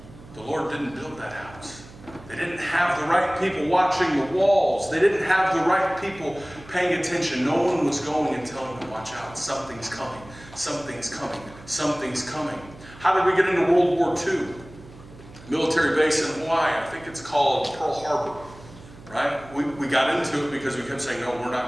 The Lord didn't build that house. They didn't have the right people watching the walls. They didn't have the right people paying attention. No one was going and telling them, watch out, something's coming, something's coming, something's coming. How did we get into World War II? Military base in Hawaii, I think it's called Pearl Harbor, right? We got into it because we kept saying, no, we're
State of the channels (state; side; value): noise; right; hum, 20 dB below the sound